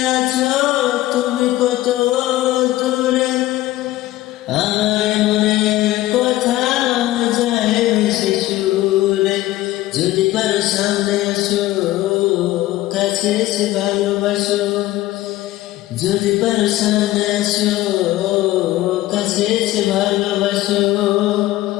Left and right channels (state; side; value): quieter; right; 16.2 dB